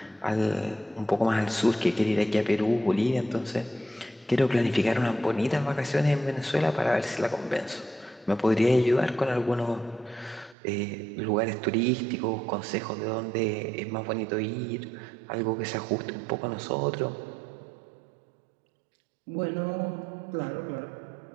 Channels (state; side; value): drops out; left; at 10.6 s